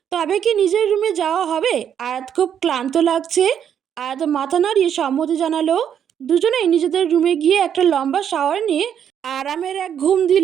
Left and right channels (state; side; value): quieter; left; 8.8 dB